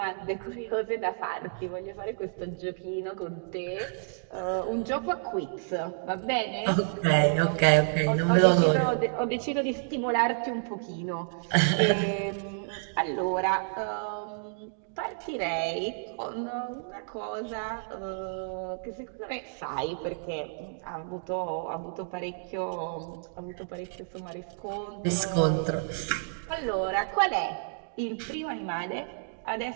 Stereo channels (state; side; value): silent; left; digital silence